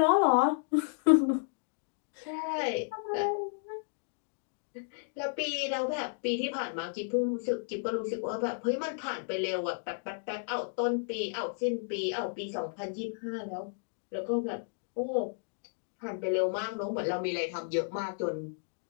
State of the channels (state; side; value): silent; right; digital silence